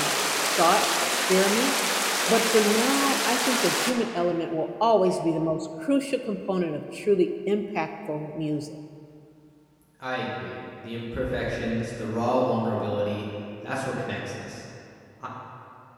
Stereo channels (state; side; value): identical; both; correlation 1.00